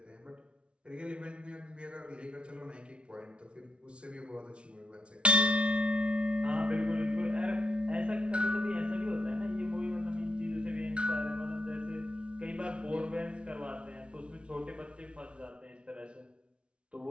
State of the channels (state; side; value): late; left; 0.059 ms